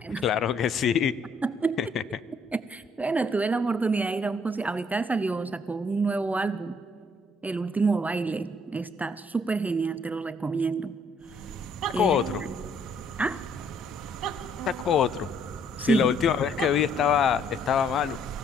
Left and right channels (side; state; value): both; normal; correlation 0.66